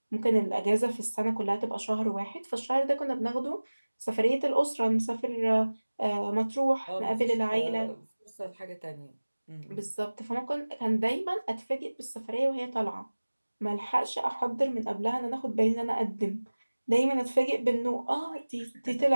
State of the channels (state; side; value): inverted; both; correlation -1.00